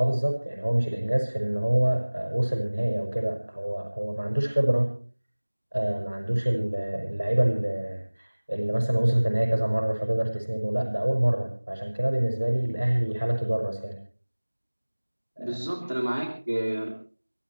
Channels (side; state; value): both; inverted; correlation -1.00